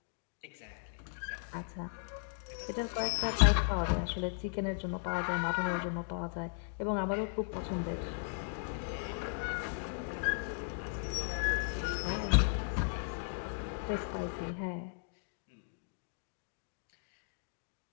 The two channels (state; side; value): silent; right; digital silence